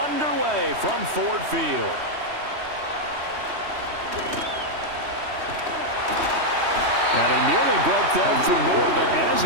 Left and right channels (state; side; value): late; left; 3.1 ms